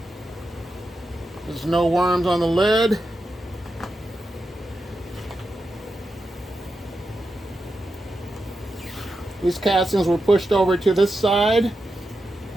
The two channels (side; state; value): both; normal; correlation 0.88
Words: There's no worms on the lid. These castings were pushed over to this side,